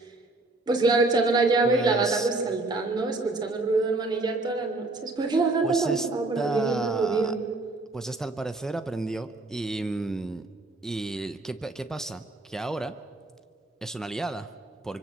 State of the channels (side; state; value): left; quieter; 3.1 dB